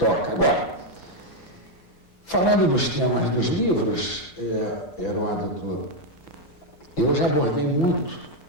Agora, falando dos temas dos livros, Heródoto, eu já abordei muito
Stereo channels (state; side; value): late; right; 6.0 ms